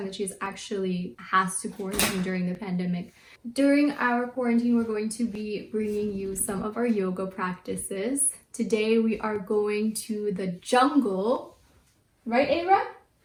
that she's actually has to quarantine during the pandemic. During our quarantine, we're going to be bringing you some of our yoga practices. Today we are going to the jungle. Right, Ava?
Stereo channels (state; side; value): identical; both; correlation 1.00